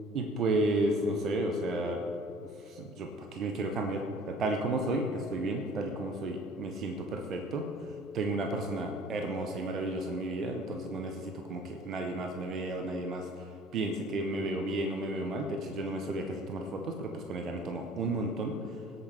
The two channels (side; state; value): both; normal; correlation 0.50